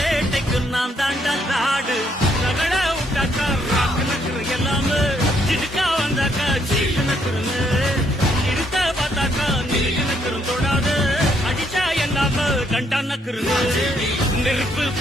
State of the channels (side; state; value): both; normal; correlation 0.72